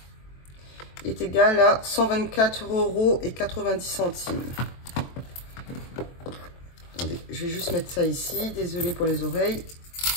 est égal à 124,90 €. Attendez, je vais juste mettre ça ici. Désolée pour les oreilles.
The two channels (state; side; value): late; right; 23 ms